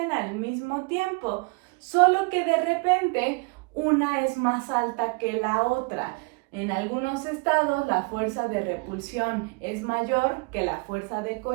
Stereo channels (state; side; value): quieter; left; 31.3 dB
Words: al mismo tiempo, solo que de repente una es más alta que la otra. En algunos estados la fuerza de repulsión es mayor que la fuerza de